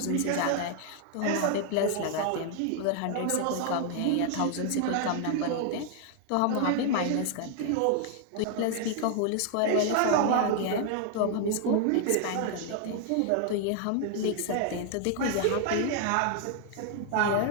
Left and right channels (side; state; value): both; different; correlation 0.00